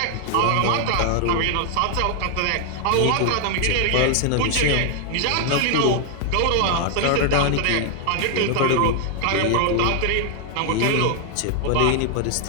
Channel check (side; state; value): both; different; correlation 0.00